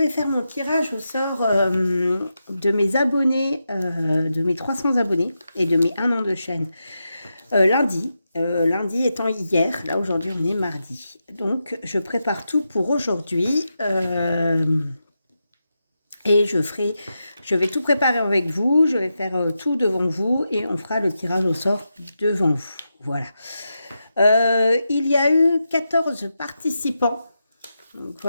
faire mon tirage au sort de mes abonnés, de mes 300 abonnés et de mes 1 an de chaîne lundi. Lundi étant hier, là aujourd'hui on est mardi. Donc je prépare tout pour aujourd'hui. Et je vais tout préparer avec vous, je vais faire tout devant vous et on fera le tirage au sort devant vous. Voilà. Il y a eu 14 participants. Donc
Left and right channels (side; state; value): both; inverted; correlation -0.88